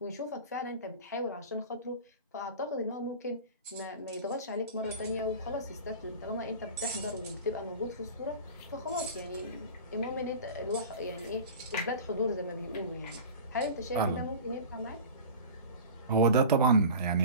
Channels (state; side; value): inverted; both; correlation -0.35